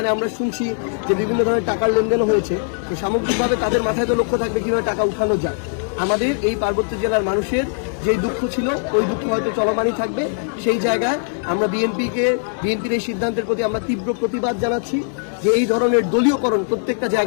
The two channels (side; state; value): right; silent; digital silence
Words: আমরা শুনছি যে বিভিন্ন ধরনের টাকার লেনদেনও হয়েছে। তো সামগ্রিকভাবে তাদের মাথায় তো লক্ষ্য থাকবে কীভাবে টাকা উঠানো যায়। আমাদের এই পার্বত্য জেলার মানুষের যেই দুঃখ ছিল, ওই দুঃখ হয়তো চলমানই থাকবে। সেই জায়গায় আমরা বিএনপির এই সিদ্ধান্তের প্রতি আমরা তীব্র প্রতিবাদ জানাচ্ছি যে এই ধরনের দলীয়করণ প্রত্যেকটা